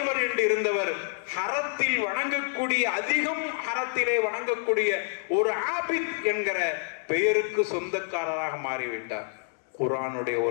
என்று இருந்தவர், ஹரத்தில் வணங்கக்கூடிய, அதிகம் ஹரத்திலே வணங்கக்கூடிய ஒரு ஆபித் என்கிற பெயருக்கு சொந்தக்காரராக மாறிவிட்டார். குர்ஆனுடைய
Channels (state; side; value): silent; right; 60 dB below the other